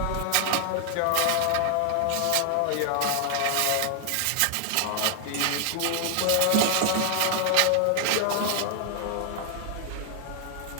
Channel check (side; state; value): both; different; correlation 0.00